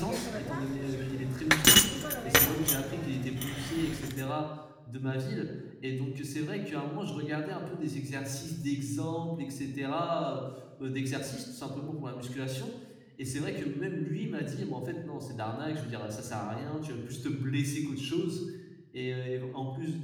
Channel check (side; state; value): both; identical; correlation 1.00